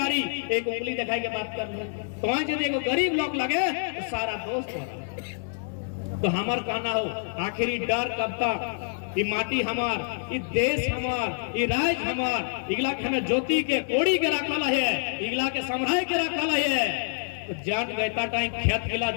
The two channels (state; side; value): silent; right; 57 dB below the other